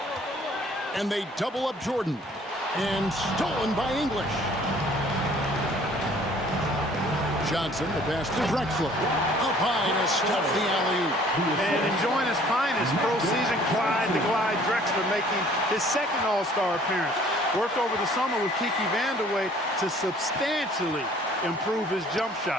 And they double up Jordan. And stolen by English. Johnson, the pass to Drexler. Up high to stuff the alley-oop. And enjoying his finest pro season, Clyde the Glide Drexler making his 2nd All-Star appearance. Worked over the summer with Kiki Vandeweghe to substantially improve his jump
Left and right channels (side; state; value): both; normal; correlation 0.55